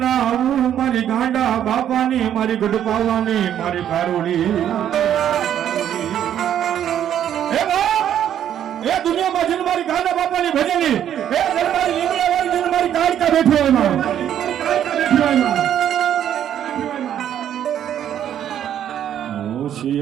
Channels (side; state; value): left; quieter; 10.2 dB